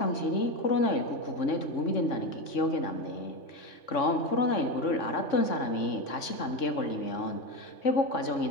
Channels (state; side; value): late; right; 3.6 ms